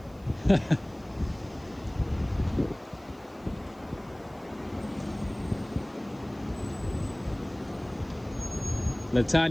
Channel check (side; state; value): right; noise; hiss, 29 dB below the sound